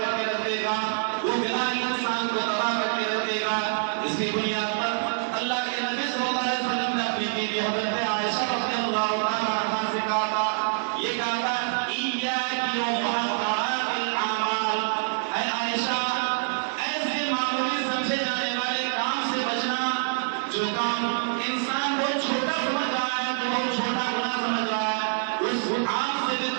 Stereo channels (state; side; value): silent; left; digital silence